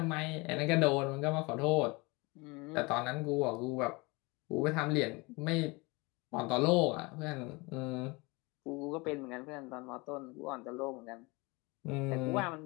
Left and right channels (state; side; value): quieter; right; 25.8 dB